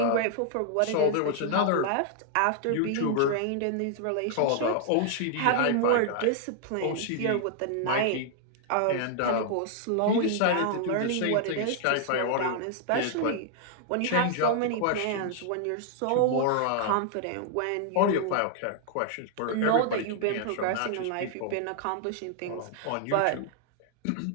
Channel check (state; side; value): different; both; correlation 0.00